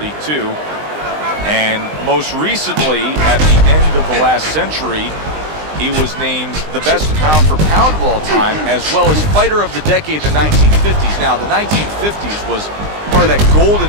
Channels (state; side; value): late; left; 20 ms